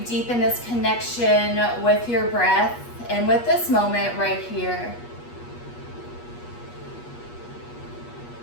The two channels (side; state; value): right; late; 8.3 ms